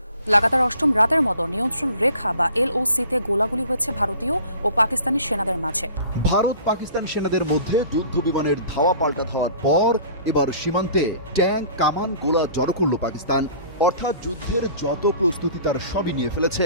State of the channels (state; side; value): inverted; both; correlation -0.47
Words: লাগাতার অষ্টম রাতের মতো নিয়ন্ত্রণ রেখা বা এলওসিতে গোলাগুলি হয়েছে ভারতীয় ও পাকিস্তানি সেনাদের মাঝে। ভারত পাকিস্তান সেনাদের মধ্যে যুদ্ধ বিমানের ধাওয়া পাল্টা ধাওয়ার পর এবার সীমান্তে ট্যাঙ্ক, কামান, গোলা জড়ো করল পাকিস্তান। অর্থাৎ যুদ্ধের যত প্রস্তুতি তার সবই নিয়ে ফেলেছে